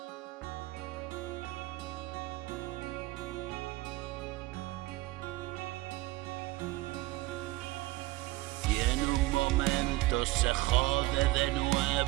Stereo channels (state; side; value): quieter; left; 19.4 dB